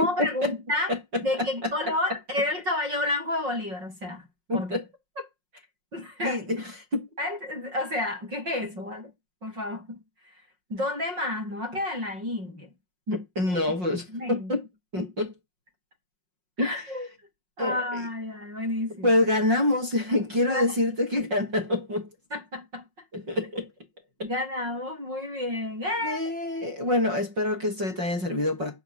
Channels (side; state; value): left; late; 5.5 ms